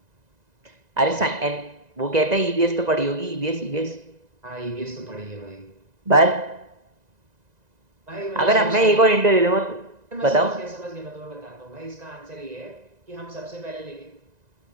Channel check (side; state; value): left; late; 1.9 ms